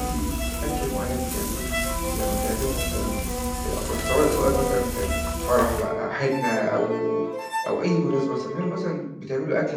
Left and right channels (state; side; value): identical; both; correlation 1.00